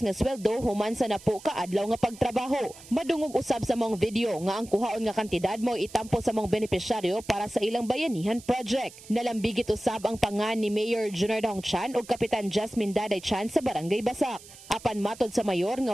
nga sweldo human sa napo ka adlaw nga pagtrabaho. Madungog usab sa mong video nga ang kuhaon nga kantidad mo itampo sa mga beneficiaryo para sa ilang bayanihan project. Nalambigit usab ang pangan ni Mayor Junard Ahongchan ug Kapitan Jasmine Daday Chan sa Barangay Basak. Apan matod sa mayor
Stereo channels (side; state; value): right; noise; hiss, 19 dB below the sound